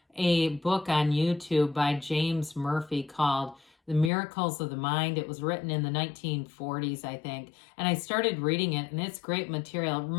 a book on YouTube by James Murphy called The Miracles of the Mind. It was written in the 1940s, I think. And I started reading it, and it's great material. It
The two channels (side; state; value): right; drops out; at 4.1 s